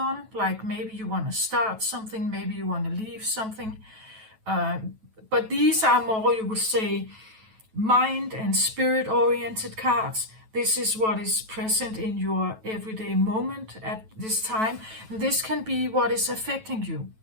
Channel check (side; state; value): left; late; 9.2 ms